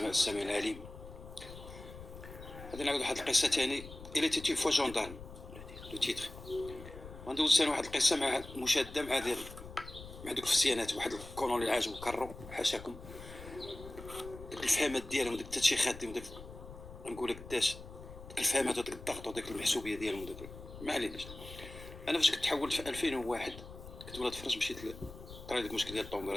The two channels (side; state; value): left; noise; rumble, 14 dB below the sound